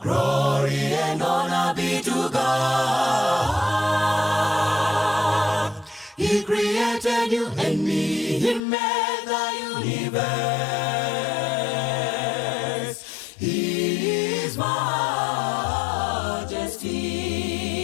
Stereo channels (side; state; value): right; drops out; at 8.6 s